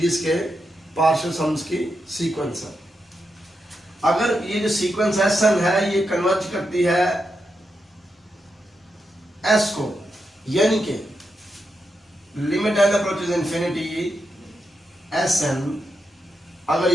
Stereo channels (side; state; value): both; normal; correlation 0.85